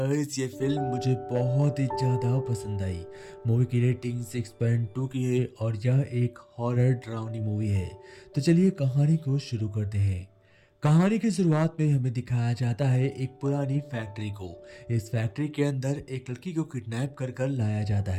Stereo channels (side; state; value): both; identical; correlation 1.00